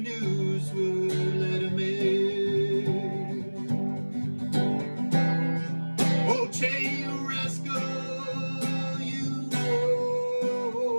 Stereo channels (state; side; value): inverted; both; correlation -1.00